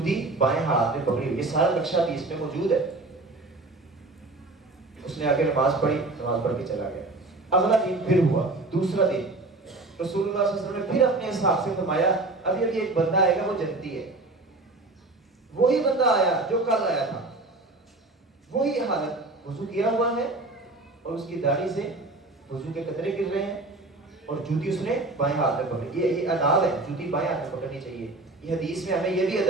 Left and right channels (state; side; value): quieter; left; 3.0 dB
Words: بائیں ہاتھ میں پکڑی ہوئی۔ یہ سارا نقشہ بھی اس میں موجود ہے۔ اس نے آگے نماز پڑھی، نماز پڑھ کے چلا گیا۔ اگلا دن پھر ہوا، دوسرا دن، رسول اللہ صلی اللہ علیہ وسلم نے پھر اپنے اصحاب سے فرمایا ابھی ایک بندہ آئے گا، وہ جنتی ہے۔ وہی بندہ آیا جو کل آیا تھا، وہی حالت، وضو کیا ہوا ہے اور اس کی داڑھی سے وضو کے قطرے گر رہے ہیں، اور جوتی اس نے بائیں ہاتھ میں پکڑی۔ یہ آداب ہے، جوتی بائیں ہاتھ میں پکڑنی چاہیے۔ یہ حدیث میں ہمیں یہ بھی